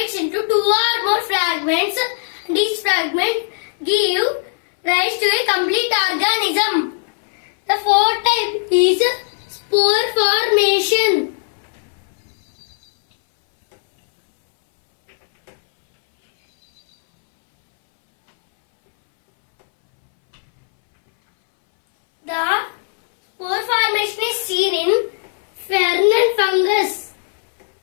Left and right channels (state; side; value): silent; right; 63 dB below the other